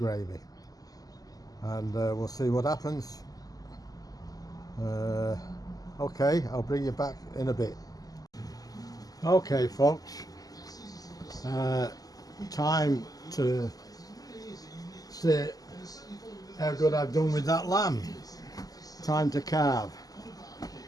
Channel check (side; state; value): right; late; 0.17 ms